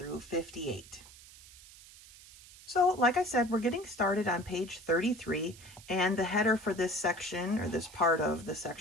58. So, like I said, we're getting started on page 33, and the header for this section, or this part of the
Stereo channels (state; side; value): noise; right; hiss, 20 dB below the sound